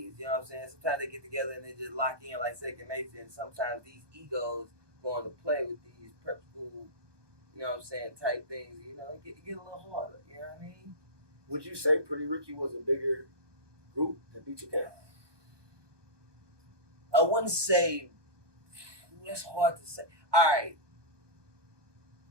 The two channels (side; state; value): left; late; 1.2 ms